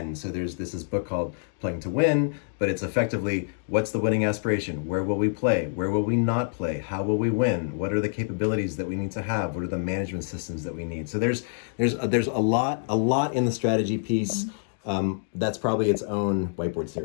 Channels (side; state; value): right; silent; digital silence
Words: So there's this book called Playing to Win, but it's effectively what's the winning aspiration? Where will we play? Where will we not play? How will we win? What are the capabilities that we need to have? What are the management systems that we need? So there's a lot in the strategy piece. That's probably its own whiteboard